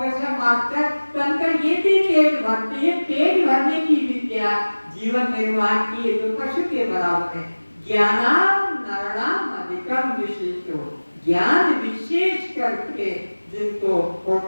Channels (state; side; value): inverted; both; correlation -1.00